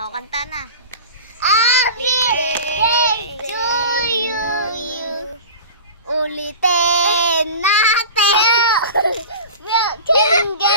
kanta na. Happy birthday to you. Ulitin natin. Milk and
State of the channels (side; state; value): both; inverted; correlation -0.34